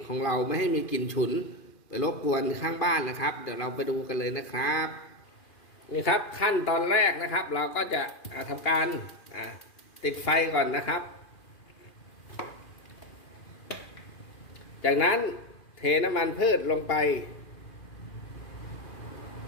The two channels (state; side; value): late; right; 2.4 ms